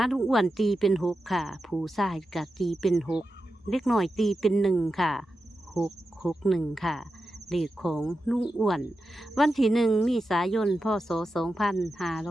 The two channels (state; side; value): normal; both; correlation 0.90